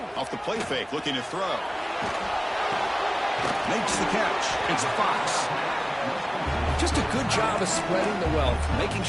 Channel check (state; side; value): identical; both; correlation 1.00